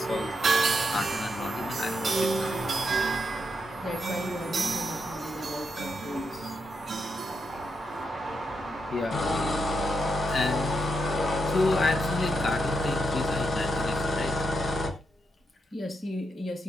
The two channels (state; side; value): normal; both; correlation 0.82